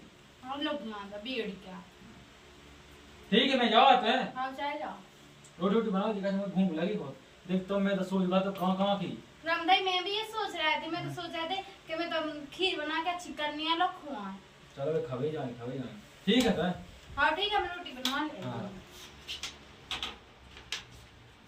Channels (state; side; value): identical; both; correlation 1.00